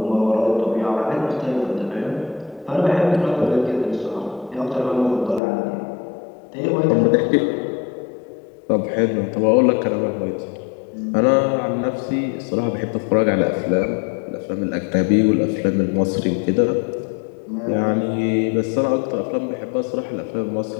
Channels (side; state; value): right; drops out; at 5.4 s